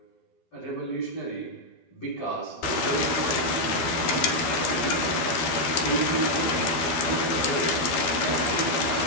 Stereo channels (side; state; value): right; late; 12 ms